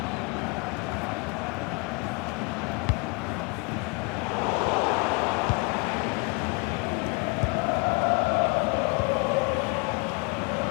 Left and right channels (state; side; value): quieter; right; 30.7 dB